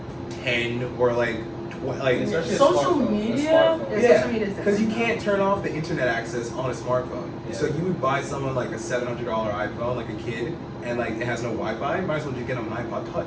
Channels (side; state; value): both; identical; correlation 1.00